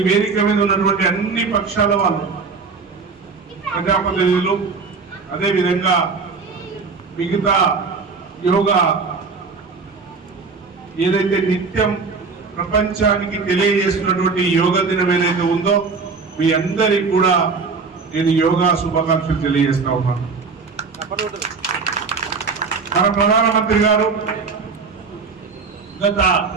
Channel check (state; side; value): quieter; left; 4.8 dB